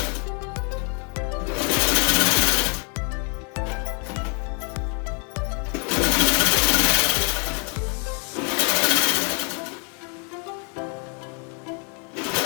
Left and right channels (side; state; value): right; quieter; 38.3 dB